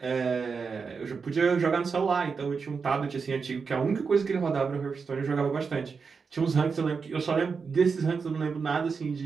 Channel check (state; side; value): quieter; left; 5.3 dB